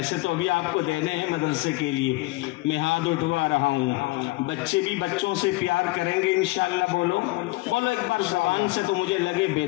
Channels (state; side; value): quieter; right; 21.3 dB